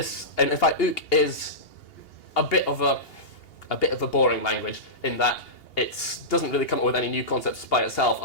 and in fact, Ook is a bit of a boring language in that it doesn't really come up with any new concepts by itself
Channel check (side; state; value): right; late; 2.8 ms